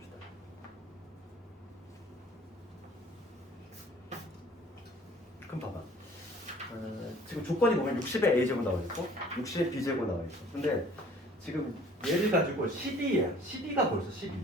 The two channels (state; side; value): normal; both; correlation 0.52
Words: 그럼 봐봐. 지금 조건이 보면 60의 a제곱 나와 있고 60의 b제곱 나와 있어. 근데 지금 얘를 가지고 12야. 12가 벌써 12.